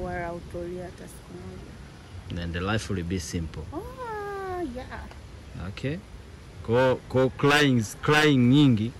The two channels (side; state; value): both; identical; correlation 1.00